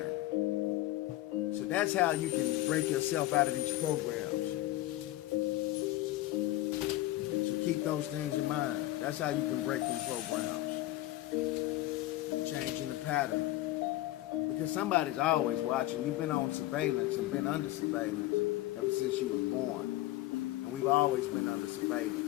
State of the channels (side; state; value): right; quieter; 16.3 dB